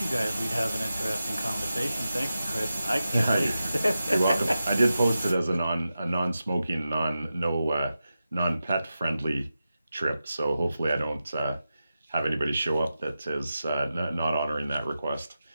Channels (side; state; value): both; inverted; correlation -0.91